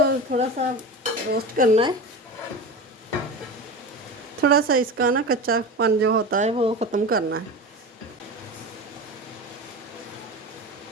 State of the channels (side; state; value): both; normal; correlation 0.28